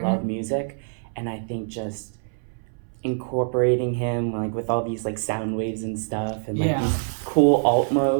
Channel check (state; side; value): silent; left; 62 dB below the other